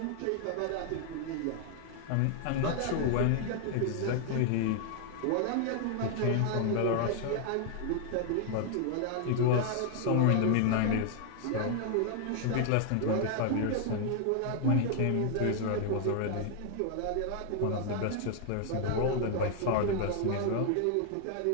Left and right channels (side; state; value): both; different; correlation 0.00